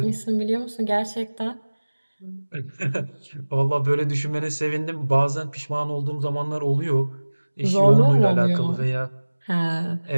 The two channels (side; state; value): both; inverted; correlation -1.00